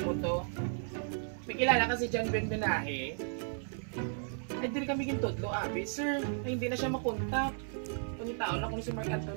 mo to, may kilala kasi dyan Ben Benahe. Ay din kami gintudlo, abi. Sir, ay hindi na siya makontak. Kung tao na kung si Mark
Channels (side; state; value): left; silent; 55 dB below the other